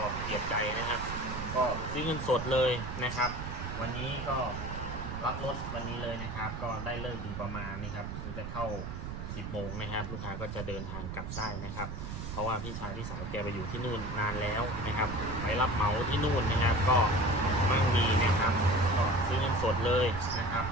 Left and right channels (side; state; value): right; noise; rumble, 7 dB below the sound